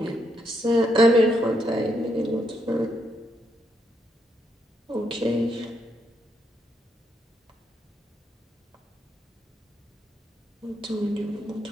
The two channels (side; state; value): both; normal; correlation 0.78